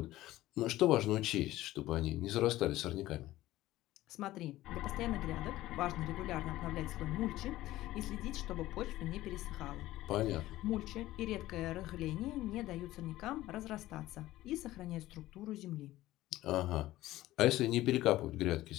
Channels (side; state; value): right; quieter; 16.1 dB